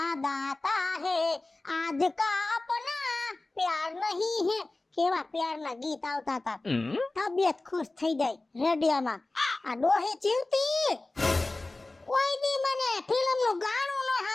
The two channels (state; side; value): quieter; right; 3.0 dB